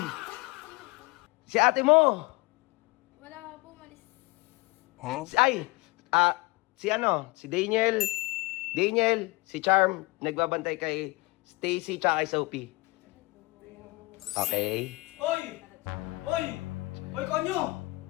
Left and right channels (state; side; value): quieter; right; 23.7 dB